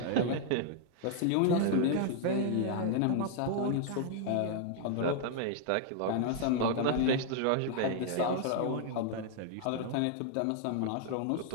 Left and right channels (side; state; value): both; different; correlation 0.00